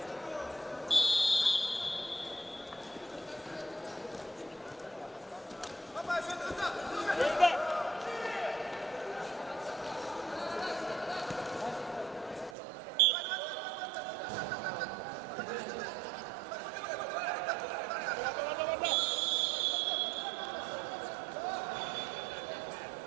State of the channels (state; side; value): drops out; left; at 12.6 s